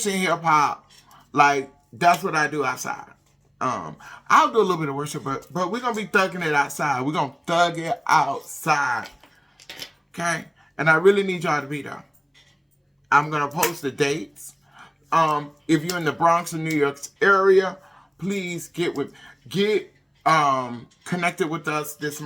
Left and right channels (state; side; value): identical; both; correlation 1.00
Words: hip hop. Like, that's what I do outside. I'll do a little bit of worship, but we're going to be thugging it outside. We're going to thug it outside. Okay? And I really need y'all to be there. I'm going to post the dates. If you're in the Bronx or New York area, please get connected with us this